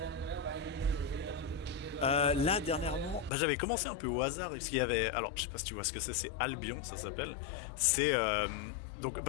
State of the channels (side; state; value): right; drops out; at 3.3 s